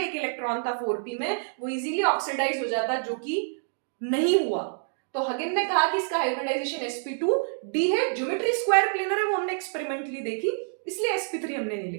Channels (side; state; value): left; silent; digital silence